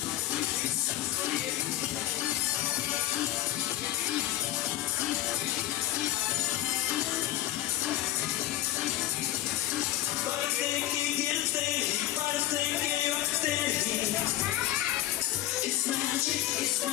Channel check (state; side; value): quieter; right; 14.3 dB